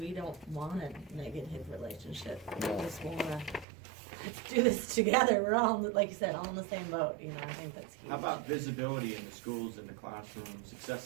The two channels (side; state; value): left; drops out; at 3.7 s